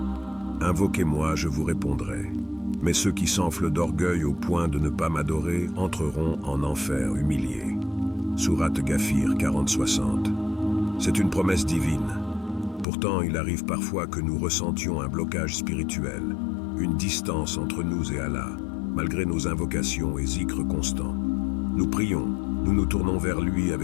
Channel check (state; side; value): drops out; right; at 12.9 s